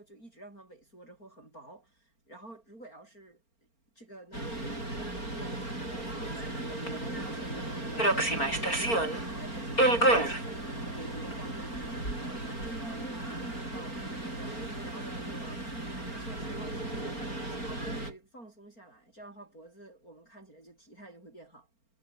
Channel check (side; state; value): right; late; 4.4 ms